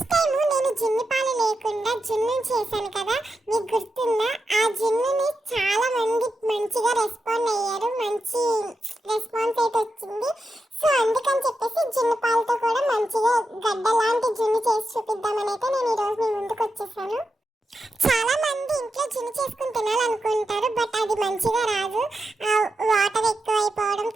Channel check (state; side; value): normal; both; correlation 0.88